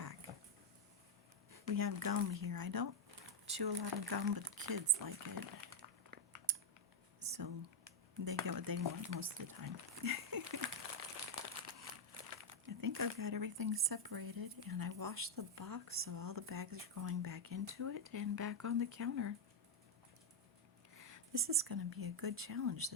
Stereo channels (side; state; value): both; normal; correlation 0.02